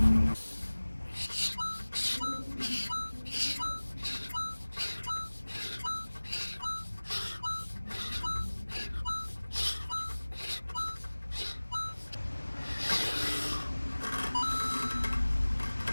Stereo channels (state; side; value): inverted; both; correlation -1.00